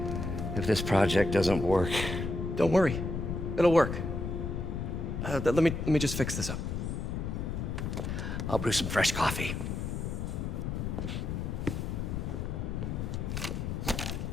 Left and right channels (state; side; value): noise; left; rumble, 3 dB below the sound